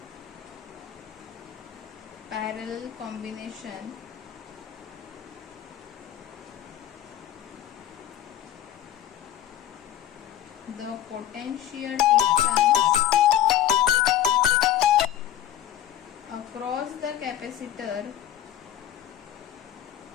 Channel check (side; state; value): right; quieter; 11.6 dB